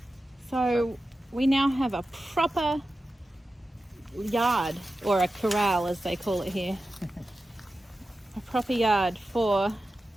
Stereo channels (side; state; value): both; normal; correlation 0.93